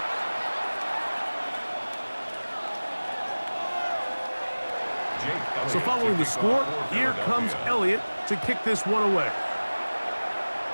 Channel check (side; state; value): both; inverted; correlation -1.00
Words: So following the score, here comes Elliott to kick this one away.